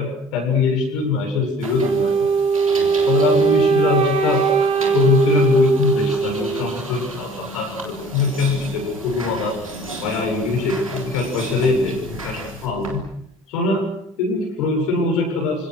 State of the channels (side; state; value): both; normal; correlation 0.48